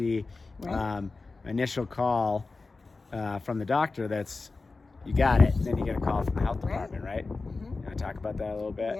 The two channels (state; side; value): quieter; right; 3.8 dB